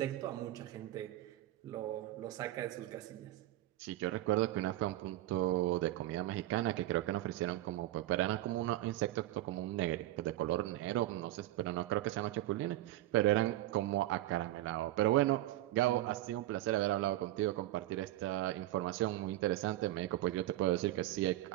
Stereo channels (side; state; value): left; quieter; 15.3 dB